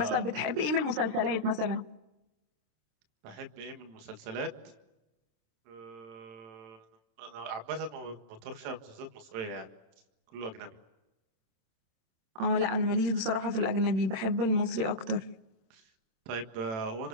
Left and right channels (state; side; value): late; left; 27 ms